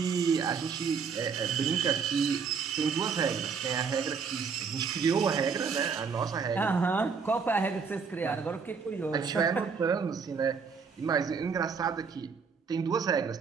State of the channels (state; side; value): quieter; left; 5.7 dB